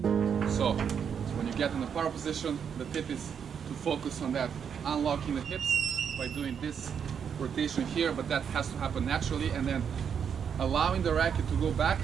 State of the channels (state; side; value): quieter; left; 7.5 dB